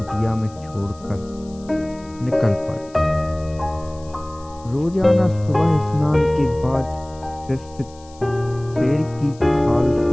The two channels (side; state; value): left; noise; hiss, 25 dB below the sound